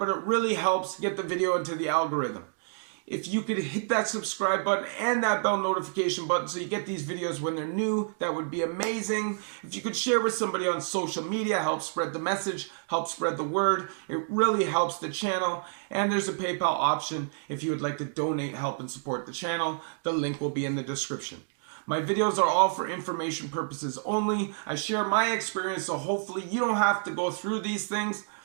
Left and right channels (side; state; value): left; silent; digital silence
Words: it really helps get the video into the algorithm. If you could hit that subscribe button and that bell notification button so you get these videos when they're new, that would be amazing. If you could share with somebody on social media, help spread the message, help spread the word. It really helps the channel. And there's a PayPal option if you would like to donate, help, and support the channel. The link will be in the description. My videos are all for information purposes only. I share my experience, so hopefully you don't have to go through these things.